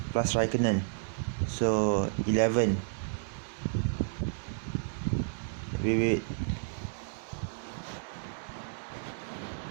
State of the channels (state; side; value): silent; left; 57 dB below the other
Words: plus Raikkonen. So 11. Wait.